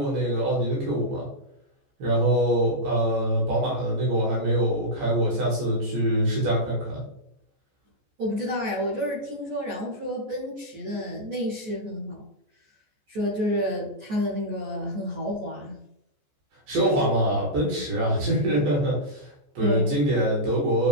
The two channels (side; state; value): left; late; 14 ms